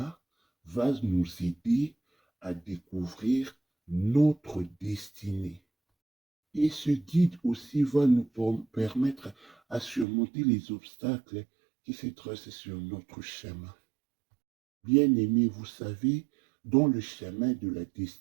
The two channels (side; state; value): left; drops out; at 10.1 s